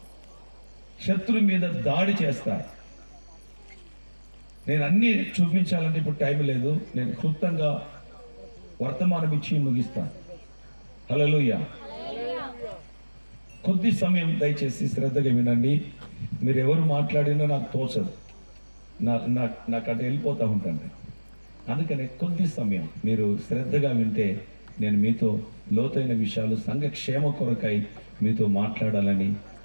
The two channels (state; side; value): inverted; both; correlation -1.00